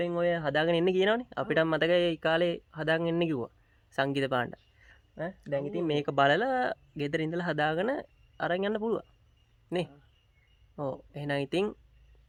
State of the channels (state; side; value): identical; both; correlation 1.00